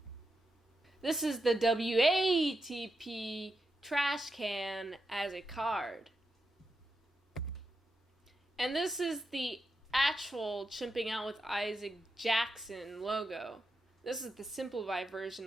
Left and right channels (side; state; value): both; normal; correlation 0.87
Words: This is the WATP trash can as a card. And this is the actual Chimping Out with Isaac Jackson logo. This is the simplified